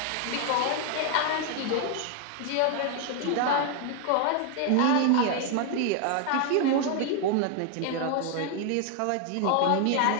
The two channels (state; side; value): different; both; correlation 0.00